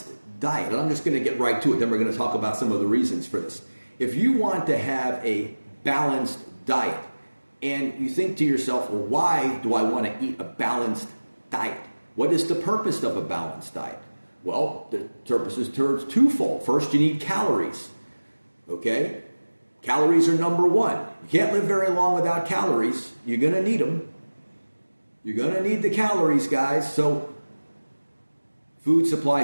diet, and I'm just going to get right to it, then we're going to talk about some of the reasons for this. If you want to have a balanced diet, and you think to yourself, well, why do I want to eat a balanced diet? What is the purpose of a balanced diet? Well, the purpose is twofold. First, you need calories. Okay? Calories are number one. You can't live very long without calories. You're going to need them. You're going to need the calories, guys. So, food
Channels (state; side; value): inverted; both; correlation -1.00